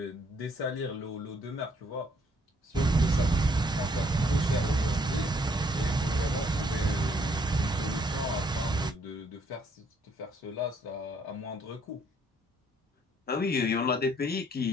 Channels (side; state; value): both; normal; correlation 0.66